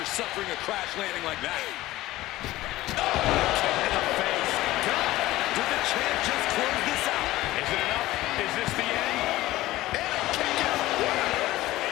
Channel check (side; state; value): right; quieter; 16.9 dB